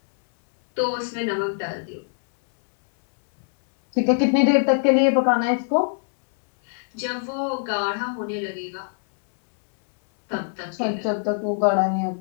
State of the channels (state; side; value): silent; right; 64 dB below the other